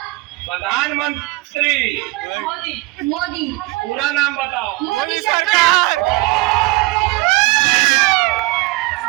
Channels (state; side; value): quieter; left; 22.4 dB